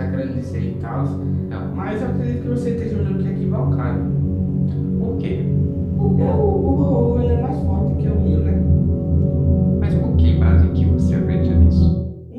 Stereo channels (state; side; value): identical; both; correlation 1.00